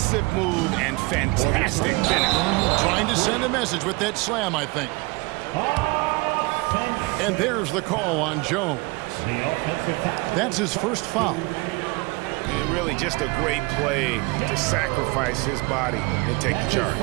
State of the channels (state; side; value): quieter; left; 25.2 dB